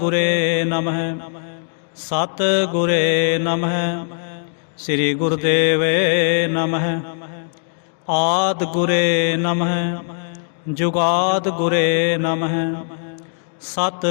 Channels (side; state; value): right; silent; digital silence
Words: ਗੁਰੇ ਨਮਹਿ ਸਤਿ ਗੁਰੇ ਨਮਹਿ ਸ੍ਰੀ ਗੁਰਦੇਵੇ ਨਮਹਿ। ਆਦਿ ਗੁਰੇ ਨਮਹਿ ਜੁਗਾਦ ਗੁਰੇ ਨਮਹਿ